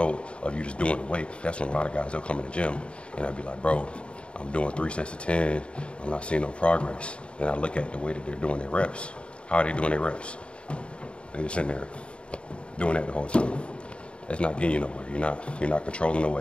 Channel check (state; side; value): late; right; 0.057 ms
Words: of you just doing the weight, that's when a lot of guys, they'll come in the gym and they'll be like, bro, I'm doing 3 sets of 10. I'm not seeing no progress. Then I look at the way that they're doing their reps. How are they doing their reps? They're just sitting there doing that the whole time. That's not getting you nowhere. You're not controlling the